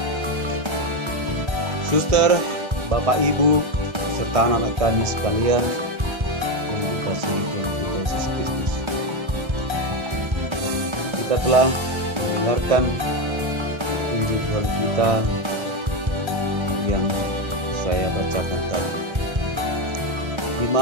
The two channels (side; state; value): left; late; 1.3 ms